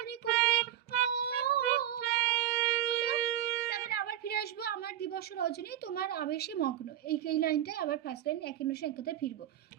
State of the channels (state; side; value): quieter; left; 11.8 dB